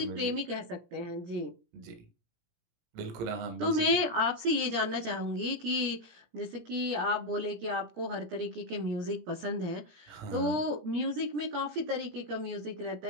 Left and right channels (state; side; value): late; left; 17 ms